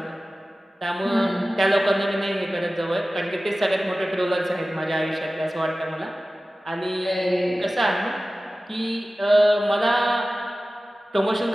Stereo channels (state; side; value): normal; both; correlation 0.96